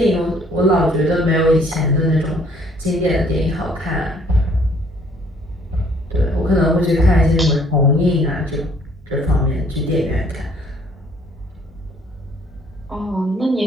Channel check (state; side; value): normal; both; correlation 0.61